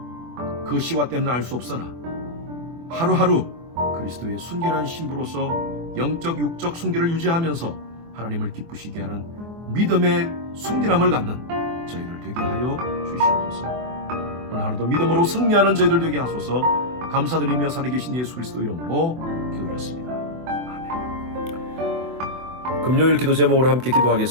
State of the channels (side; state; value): left; late; 24 ms